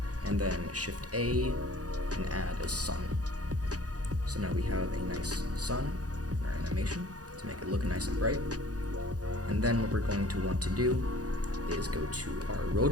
and then Shift A and add a sun. So now we have a nice sun in our animation to make it look nice and bright. And then what we're going to want to do is go to our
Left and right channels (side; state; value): left; late; 0.67 ms